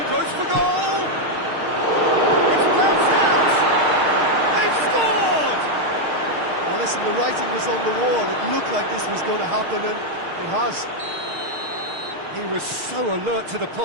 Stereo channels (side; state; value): left; late; 6.5 ms